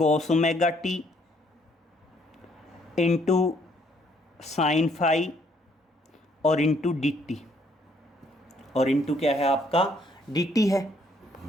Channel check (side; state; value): both; normal; correlation 0.67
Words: omega T into sine phi और into D T, और into क्या है आपका डी टी है।